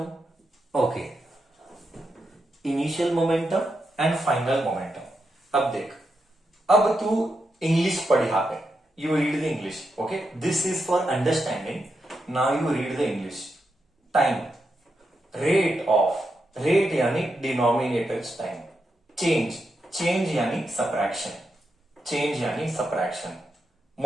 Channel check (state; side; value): normal; both; correlation 0.85